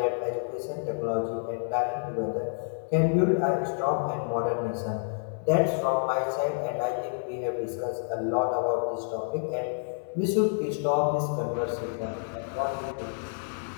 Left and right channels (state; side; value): silent; right; digital silence